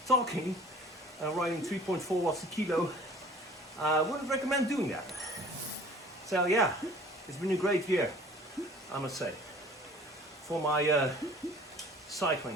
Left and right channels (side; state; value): both; normal; correlation 0.48